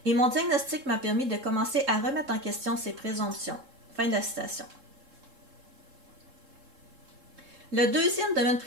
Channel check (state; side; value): late; left; 3.7 ms